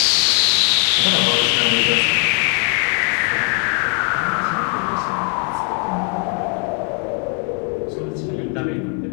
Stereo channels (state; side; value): quieter; right; 39.6 dB